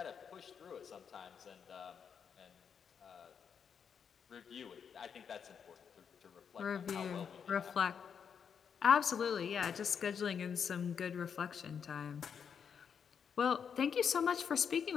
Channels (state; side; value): quieter; right; 7.1 dB